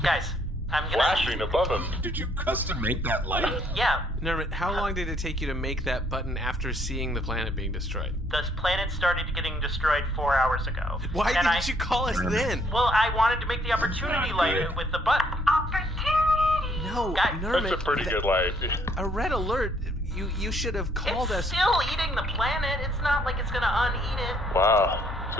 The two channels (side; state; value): both; normal; correlation 0.67